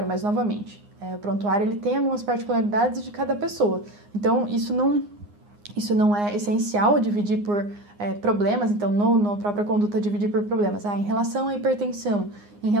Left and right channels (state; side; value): late; left; 9.7 ms